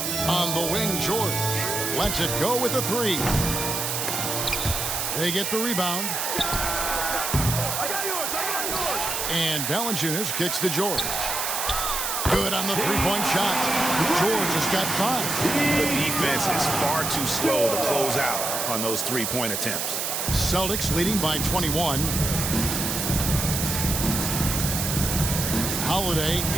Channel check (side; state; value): right; noise; hiss, 1 dB below the sound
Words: On the wing, George lets it go with a 3. They get the rebound. And Valanciunas kicks to George. Good on the three-point shot. George has got 5. The defense is far too slow to close out on those three-point attempts. Celtics leading by 21. Holiday